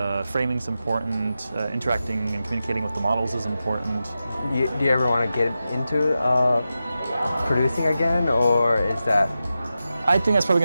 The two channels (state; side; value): inverted; both; correlation -0.91